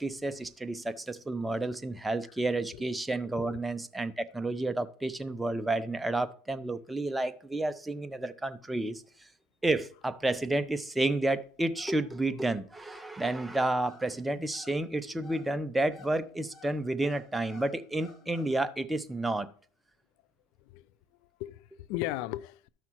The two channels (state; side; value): normal; both; correlation 0.86